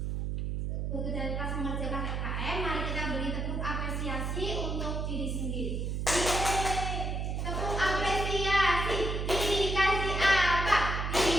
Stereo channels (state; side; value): noise; right; hum, 1 dB below the sound